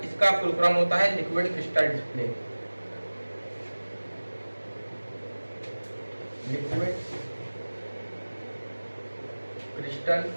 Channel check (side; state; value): both; inverted; correlation -1.00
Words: इसका फुल फॉर्म होता है liquid crystal display. Liquid crystal